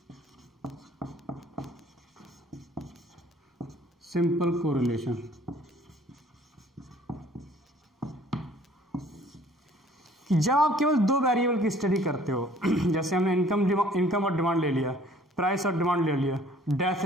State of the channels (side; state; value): both; normal; correlation 0.55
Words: simple correlation। जब आप केवल दो वेरिएबल की स्टडी करते हो, जैसे हमने इनकम और डिमांड ले लिया, प्राइस और डिमांड ले लिया, डेथ